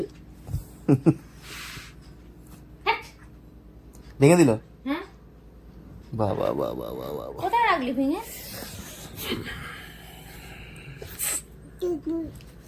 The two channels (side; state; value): both; identical; correlation 1.00